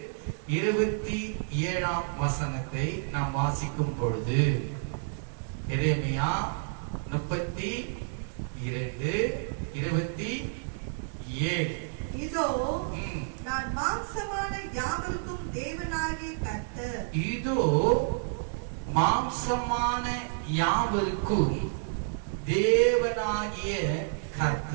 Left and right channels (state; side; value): silent; left; digital silence